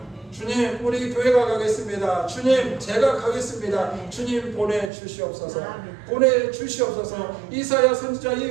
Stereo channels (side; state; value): left; drops out; at 4.9 s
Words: 주님, 우리 교회가 가겠습니다. 주님, 제가 가겠습니다. 주님, 보내주시옵소서. 보내주시옵소서. 이사야 선지자